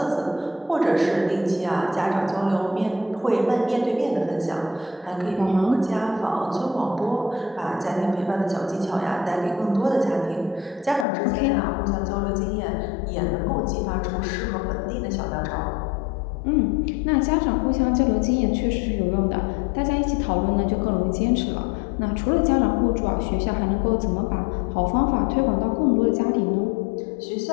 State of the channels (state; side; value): drops out; right; at 11.1 s